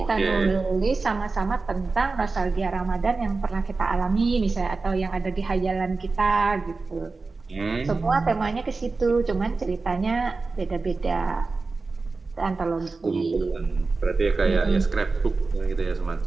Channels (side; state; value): left; quieter; 3.9 dB